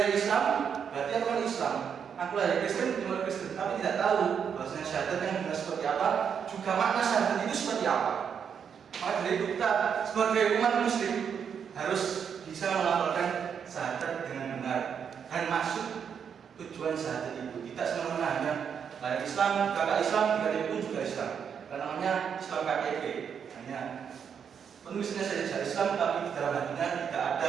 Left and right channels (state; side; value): quieter; left; 7.4 dB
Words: Islam, berarti aku kan Islam. Aku lahir Kristen, cuma Kristen, tapi tidak tahu bahwasanya syahadat yang benar seperti apa, juga makna syahadat itu seperti apa. Maka dari itu kita sebagai umat muslim harus bisa melafalkan syahadat dengan benar dan masuk tujuan syahadat itu. Kita semena-mena hanya lahir Islam, kakak Islam, KTP pun juga Islam. Karena namanya Islam KTP, hanya penulisnya saja Islam, tapi di dalam hatinya tidak